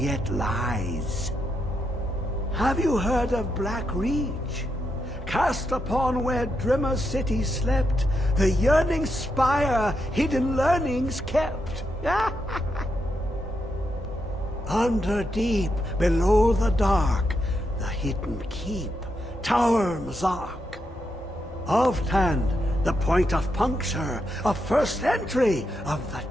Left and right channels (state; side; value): normal; both; correlation 0.83